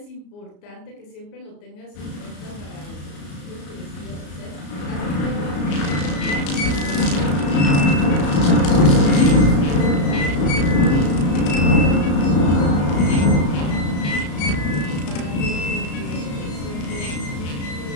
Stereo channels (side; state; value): right; late; 34 ms